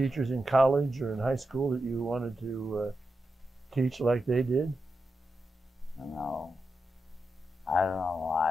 in college or in high school that you wanted to teach like they did? No, I don't know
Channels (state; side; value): normal; both; correlation 0.88